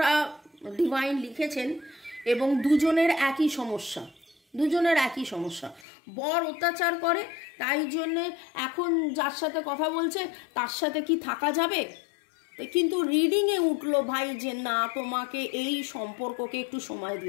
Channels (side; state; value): right; drops out; at 5.9 s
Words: ডিভাইন লিখেছেন এবং দুজনের একই সমস্যা। বর অত্যাচার করে, তাই জন্যে এখন যার সাথে কথা বলছে তার সাথে কি থাকা যাবে, কিন্তু রিডিংয়ে উঠলো ভাই যে না তোমাকে এই সম্পর্ককে একটু সময়